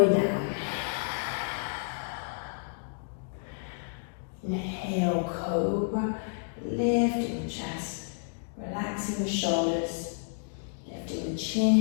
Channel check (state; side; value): silent; right; digital silence